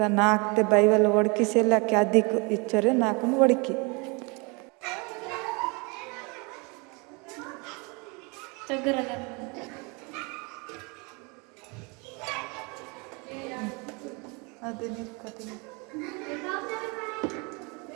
నాకుతే బైవల్ ఒడికిసేలాకి అదికు ఇచ్చరే నాకును ఒడికి అదే నిర్కతి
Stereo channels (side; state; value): left; quieter; 30.1 dB